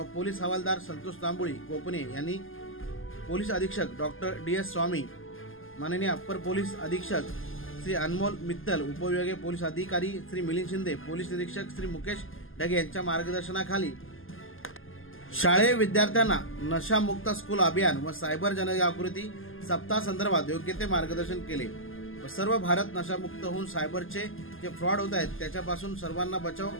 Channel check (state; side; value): late; right; 0.59 ms